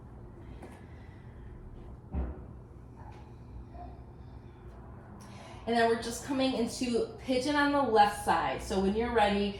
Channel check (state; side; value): identical; both; correlation 1.00